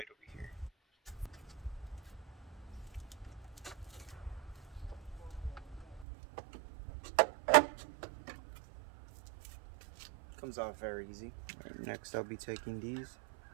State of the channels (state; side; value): drops out; left; at 6.1 s